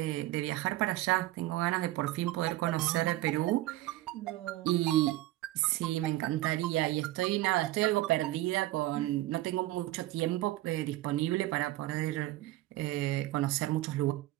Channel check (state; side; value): quieter; left; 16.6 dB